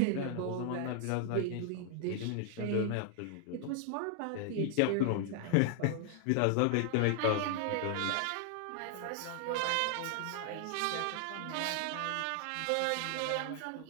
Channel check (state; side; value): different; both; correlation 0.00